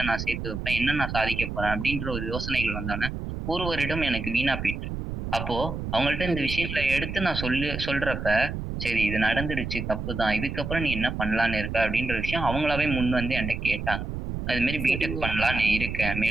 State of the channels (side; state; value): right; noise; rumble, 5 dB below the sound